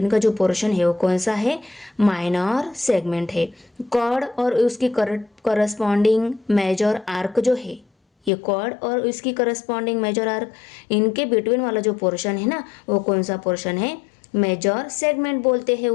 का जो पोर्शन है वो कौन सा है, माइनर सेगमेंट है। कॉर्ड और उसकी करस्पॉन्डिंग मेजर आर्क जो है, ये कॉर्ड और उसकी करस्पॉन्डिंग मेजर आर्क, इनके बिटवीन वाला जो पोर्शन है ना, वो कौन सा पोर्शन है, मेजर सेगमेंट बोलते हैं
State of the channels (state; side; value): drops out; right; at 8.3 s